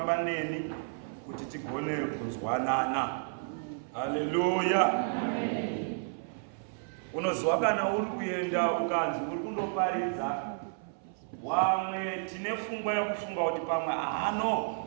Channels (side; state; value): left; silent; 57 dB below the other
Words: neni kuti tigone kunzwanana. Haleluya. Unoziva kana uri kuenda ukanzi uri kundoparidza wamwe tine pfungwa yekufunga kuti pamwe